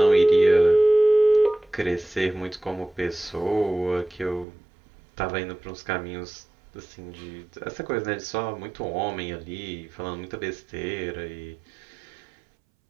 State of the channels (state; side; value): drops out; left; at 4.5 s